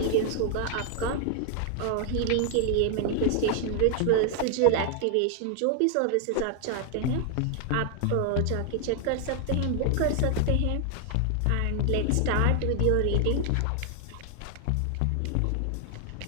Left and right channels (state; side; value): different; both; correlation 0.00